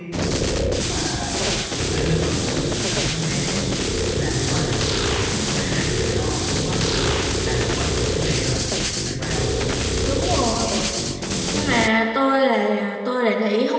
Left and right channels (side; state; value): both; identical; correlation 1.00